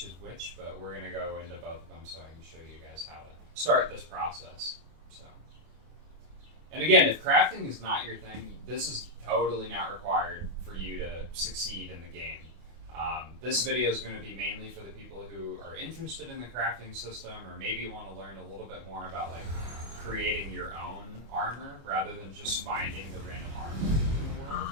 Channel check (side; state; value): left; late; 25 ms